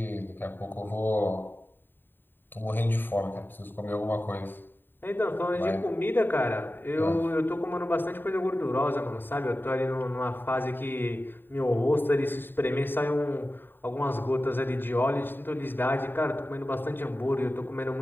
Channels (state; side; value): late; right; 0.095 ms